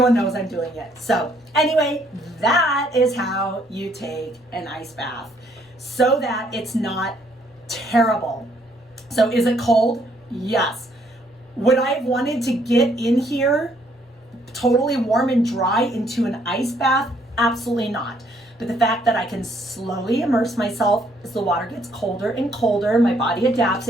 knows I'm doing it. So anyway, that is how you take an ice bath so that it's not terrible. So is it cold? Yes. Would I have wanted to get in here totally warm and dry into an ice bath? Absolutely not. But the fact that I can slowly immerse myself as the water gets colder and colder, my body adapts,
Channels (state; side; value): normal; both; correlation 0.67